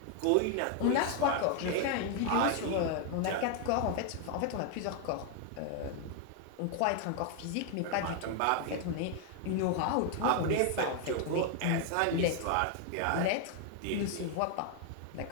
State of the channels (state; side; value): different; both; correlation 0.00